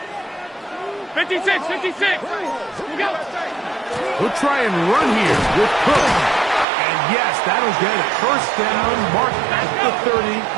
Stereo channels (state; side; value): drops out; left; at 6.7 s